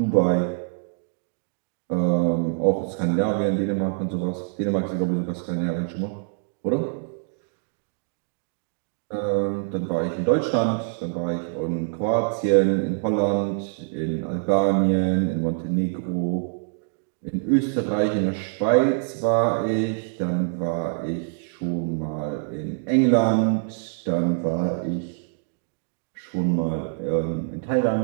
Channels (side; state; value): left; silent; digital silence